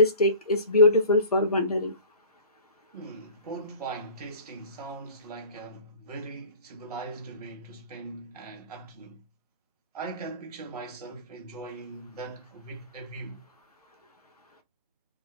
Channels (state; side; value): inverted; both; correlation -0.44